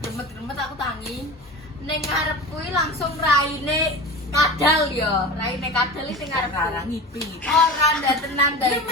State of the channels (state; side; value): normal; both; correlation 0.31